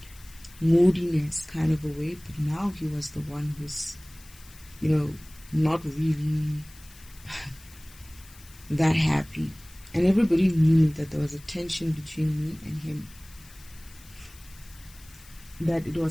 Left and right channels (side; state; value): left; noise; hiss, 22 dB below the sound